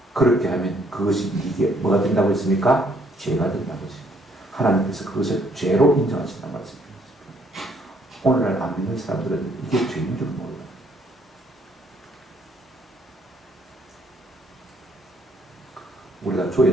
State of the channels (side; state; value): both; normal; correlation 0.67